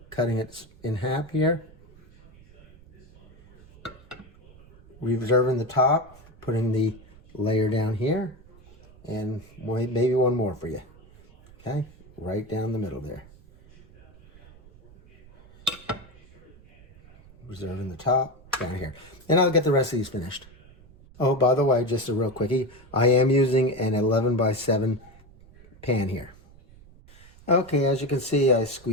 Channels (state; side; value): noise; right; rumble, 24 dB below the sound